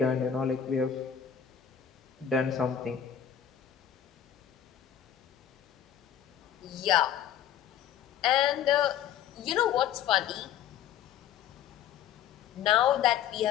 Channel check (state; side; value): quieter; right; 9.6 dB